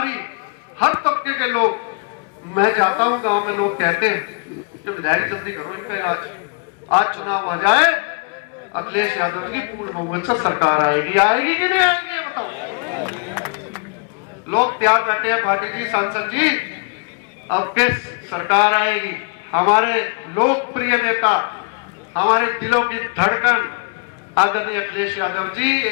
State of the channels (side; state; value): right; quieter; 33.1 dB